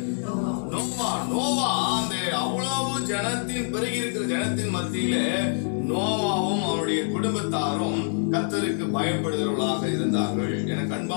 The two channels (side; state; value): right; silent; 61 dB below the other